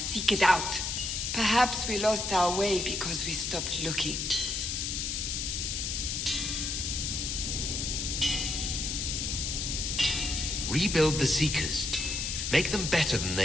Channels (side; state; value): left; noise; hiss, 2 dB below the sound